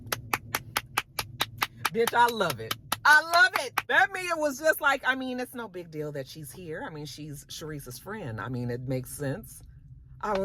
bitch, I love it. I love it. That Mia was just like, it's no big deal that she's here. She's Sharice's friend. It makes sense. I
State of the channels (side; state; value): both; identical; correlation 1.00